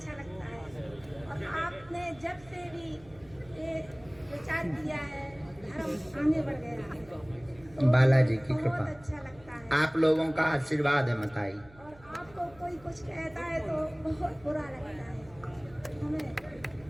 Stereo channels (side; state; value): right; noise; hum, 23 dB below the sound